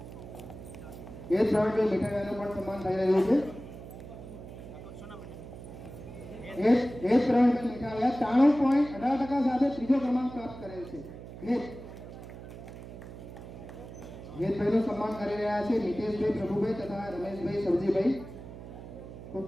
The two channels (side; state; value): right; noise; hum, 13 dB below the sound